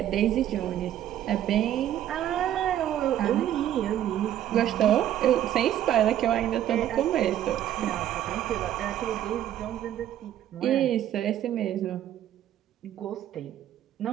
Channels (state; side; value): quieter; left; 11.6 dB